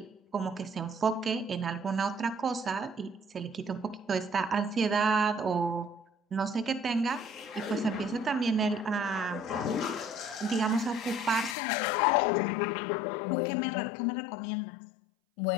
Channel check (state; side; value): drops out; right; at 11.6 s